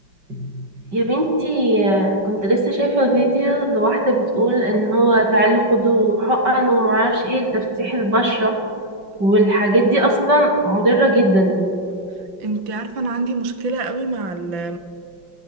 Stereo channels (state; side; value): late; left; 5.3 ms